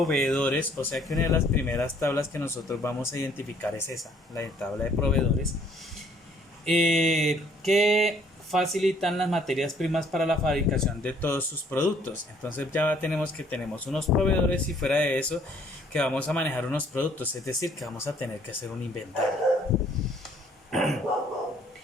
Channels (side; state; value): both; normal; correlation 0.62